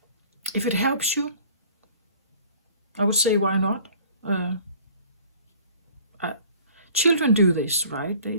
If it helps you, I would say why not? Children do this, right?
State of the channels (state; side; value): inverted; both; correlation -0.49